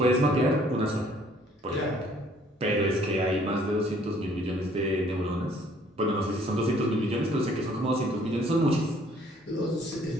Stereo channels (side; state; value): both; normal; correlation 0.60